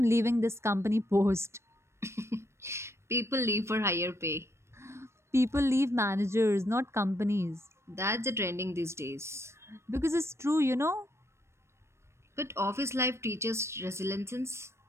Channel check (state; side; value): late; left; 0.13 ms